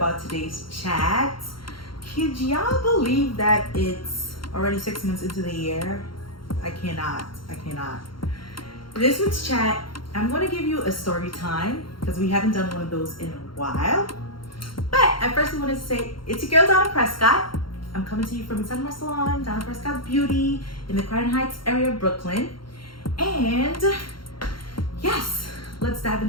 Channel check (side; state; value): right; late; 0.73 ms